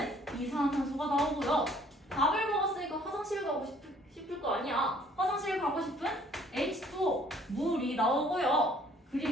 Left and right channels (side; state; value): both; normal; correlation 0.59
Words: 이산화탄소가 나오고요. 밥을 먹었으니까 화장실 가고 싶을 거 아니야. 화장실 가고 싶은 H2O 물이 나오고요.